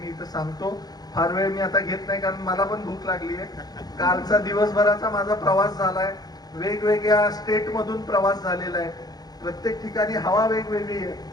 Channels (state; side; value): late; right; 0.19 ms